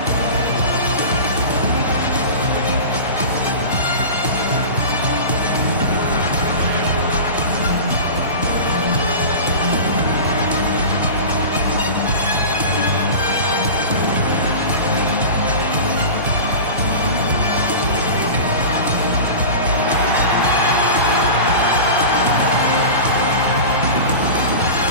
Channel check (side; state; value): both; inverted; correlation -0.32